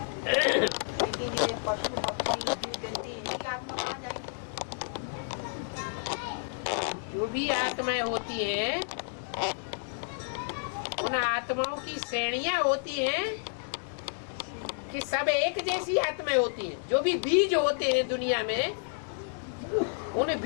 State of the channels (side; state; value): right; silent; digital silence